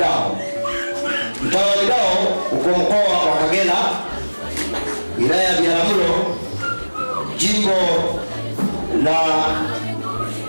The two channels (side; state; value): both; inverted; correlation -1.00